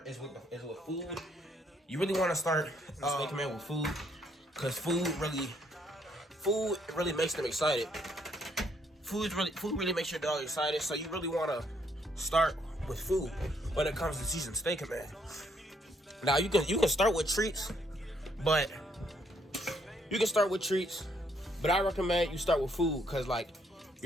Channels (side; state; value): both; normal; correlation 0.70